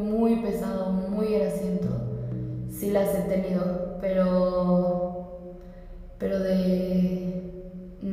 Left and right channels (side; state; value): both; identical; correlation 1.00